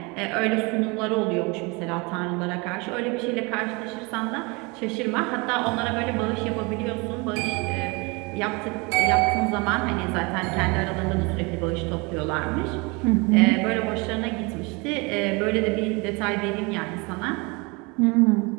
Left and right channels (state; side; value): quieter; left; 27.9 dB